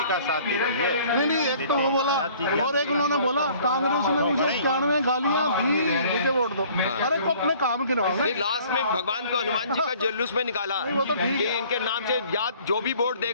का साथ दे रही है। नहीं, एक तो वो बोला और एक उन्होंने बोला कांग्रेस ने मुझे 91 गालियां दी, मुझे वोट दो। अरे को अपने काम गिनवाओ ना। नहीं, लास्ट में भगवान को हनुमान जी का जुलूस में निकाला कि इनके नाम से याद जो भी वोट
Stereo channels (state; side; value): inverted; both; correlation -0.54